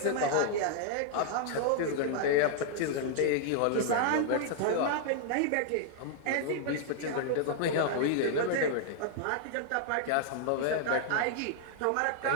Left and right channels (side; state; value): both; different; correlation -0.01